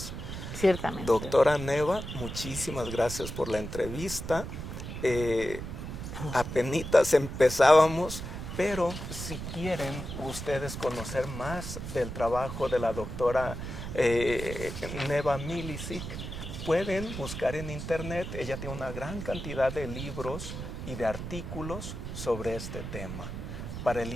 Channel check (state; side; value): noise; right; rumble, 7 dB below the sound